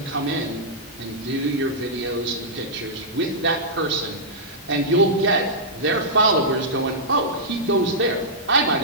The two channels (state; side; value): normal; both; correlation -0.11